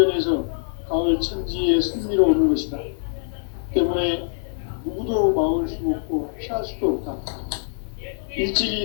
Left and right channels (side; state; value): right; silent; digital silence